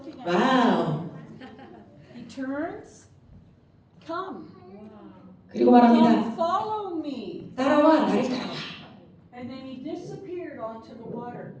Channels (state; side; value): identical; both; correlation 1.00